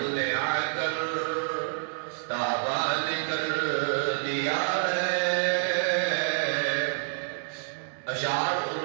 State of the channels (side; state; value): left; silent; digital silence